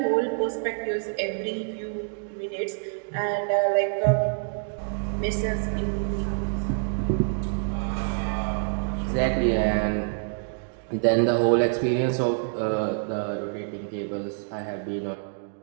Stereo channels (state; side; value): silent; left; digital silence